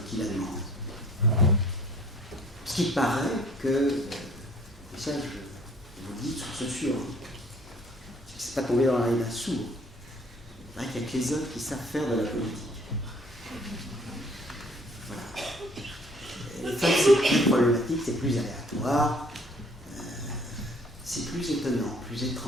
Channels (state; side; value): normal; both; correlation 0.56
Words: qui la demandent. Ce qui paraît que, et ça je vous le dis de source sûre, c'est pas tombé dans l'oreille d'un sourd. Il paraît qu'il n'y a que les hommes qui savent faire de la politique. Voilà. Les femmes, c'est plus problématique, c'est plus aléatoire, c'est plus étonnant, plus